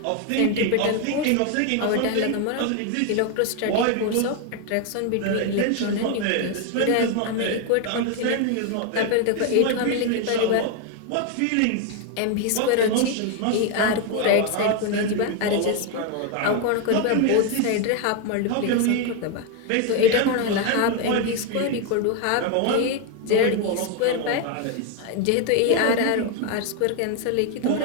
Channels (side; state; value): both; different; correlation 0.01